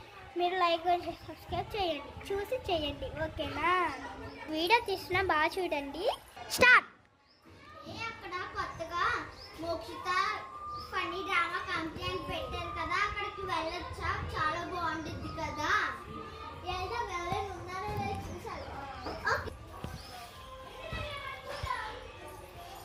మీరు లైక్ చేసి సబ్స్క్రైబ్ చేయండి, చూసి చేయండి, ఓకేనా? వీడియో తీసిన బాగా చూడండి. స్టార్ట్. అక్కడ కొత్తగా మోక్షిత ఫన్నీ డ్రామా కంపెనీ అని పెట్టారు కదా, అక్కడికి వెళ్ళొచ్చా? చాలా బాగుంటుంది కదా. ఎవరైనా ఉన్నారో లేదో చూసారు.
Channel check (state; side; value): identical; both; correlation 1.00